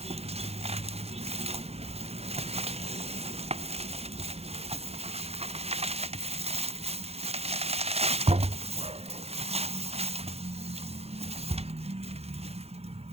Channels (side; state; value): left; late; 0.30 ms